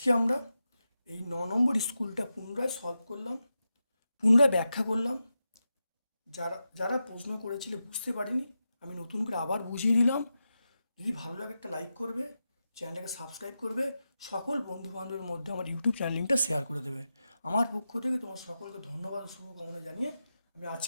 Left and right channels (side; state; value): both; inverted; correlation -0.90